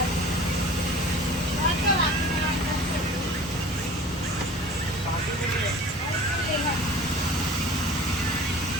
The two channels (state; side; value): normal; both; correlation 0.43